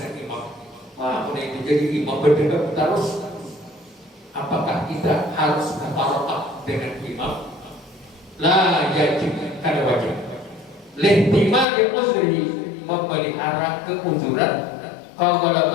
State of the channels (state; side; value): drops out; right; at 11.7 s